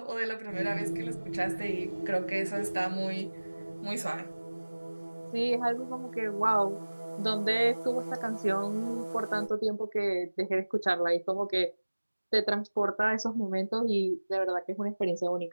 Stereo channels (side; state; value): both; inverted; correlation -1.00